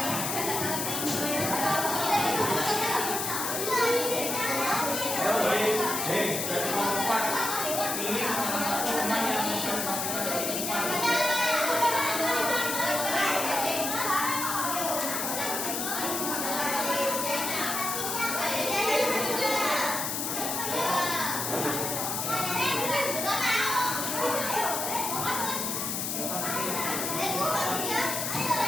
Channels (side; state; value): left; noise; hiss, 2 dB below the sound